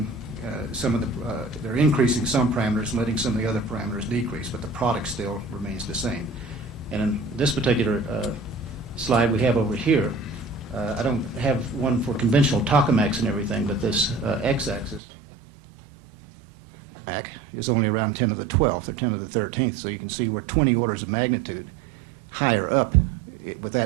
some of the, they're increasing some parameters and letting some of the other parameters decrease, but the product still remains the same. And in this particular slide we have over here, I don't have one for conventional tokamaks and everything, but this x-axis is only around 10 to the 12th or 10 to the 13th, so you can see we're 20 orders of magnitude higher up with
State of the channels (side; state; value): left; drops out; at 15.0 s